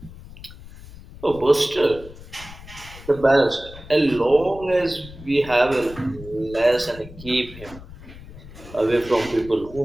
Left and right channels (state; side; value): noise; left; rumble, 17 dB below the sound